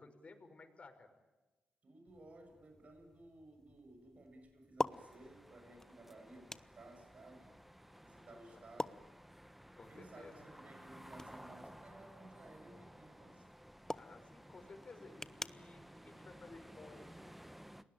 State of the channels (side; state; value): both; normal; correlation 0.95